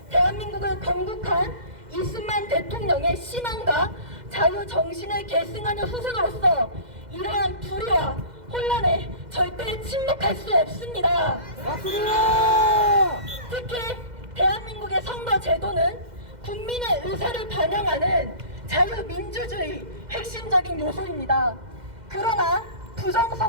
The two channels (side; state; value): left; late; 2.0 ms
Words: 대한민국을 건국한 이승만 대통령의 신앙과 자유 정신을 계승하는 후손으로서 이러한 불의와 혼란에 절대 침묵할 수 없습니다. 특히 대한민국의 선거 제도는 국민의 의사를 반영하는 자유민주주의 핵심적인 요소입니다. 그러나